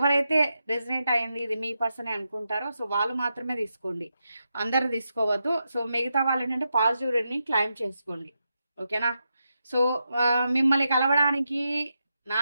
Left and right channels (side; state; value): both; inverted; correlation -0.86